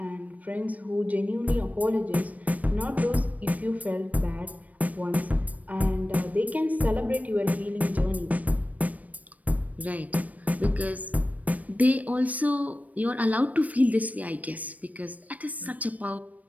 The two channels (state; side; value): late; left; 0.072 ms